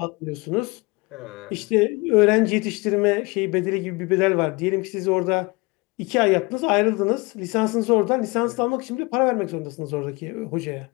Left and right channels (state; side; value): quieter; right; 25.8 dB